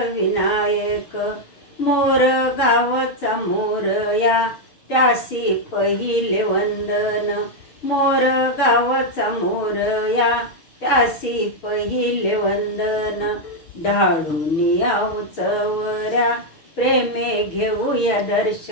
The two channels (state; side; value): late; right; 6.5 ms